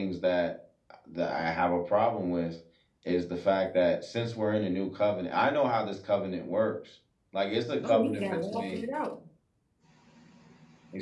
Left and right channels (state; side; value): identical; both; correlation 1.00